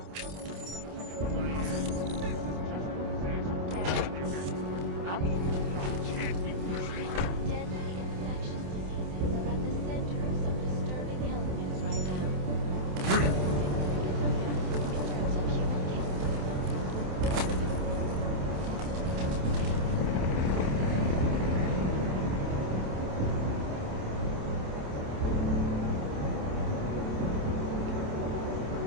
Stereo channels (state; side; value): late; left; 27 ms